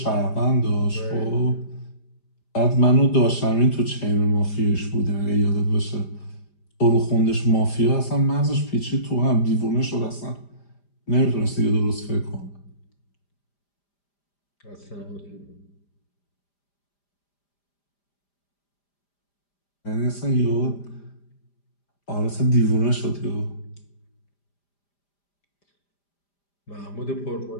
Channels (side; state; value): right; late; 5.0 ms